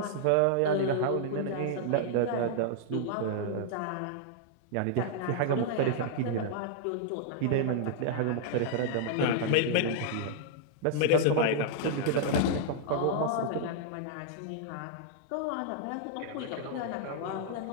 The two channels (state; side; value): different; both; correlation -0.01